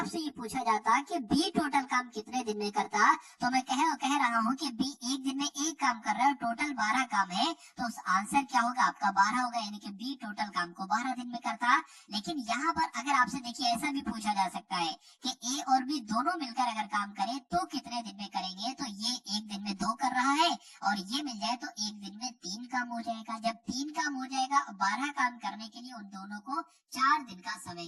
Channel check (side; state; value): both; identical; correlation 1.00